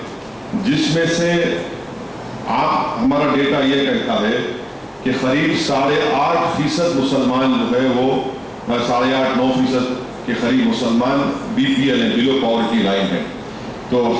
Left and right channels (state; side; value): identical; both; correlation 1.00